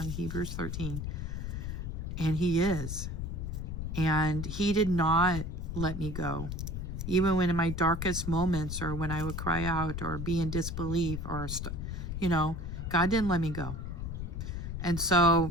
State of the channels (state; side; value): noise; left; rumble, 4 dB below the sound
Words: Hebrews 13. And he is. And he did not let me go. Even when in my darkest moments, or when I would cry out or be in disbelief, or, God didn't let me go. And